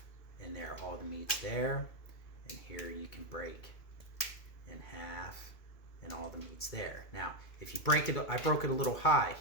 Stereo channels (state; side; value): late; right; 2.5 ms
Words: and there all the meat's there. And here you can break in half, and all the meat's there. Now, if you break it, I broke it a little high